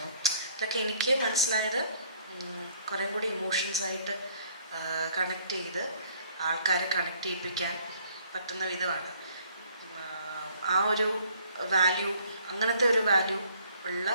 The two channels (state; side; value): inverted; both; correlation -0.61